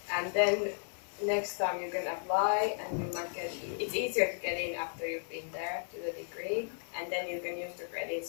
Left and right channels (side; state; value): right; silent; digital silence